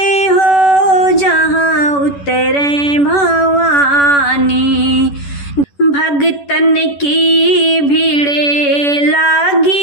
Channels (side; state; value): right; late; 11 ms